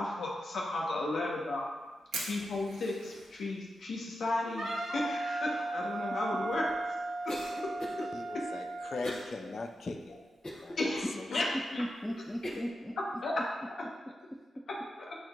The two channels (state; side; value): normal; both; correlation 0.89